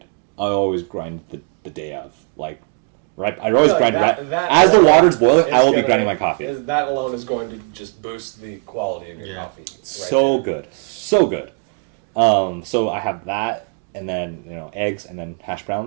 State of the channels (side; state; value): left; quieter; 36.9 dB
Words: I always grind the day of. Like right. I always grind that as the water's boiling. I will be grinding my coffee. That alone is going to just boost the quality of your coffee. So good. So I have that, and then eggs, and then hash